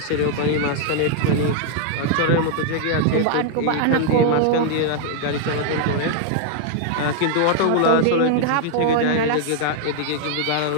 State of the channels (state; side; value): different; both; correlation 0.00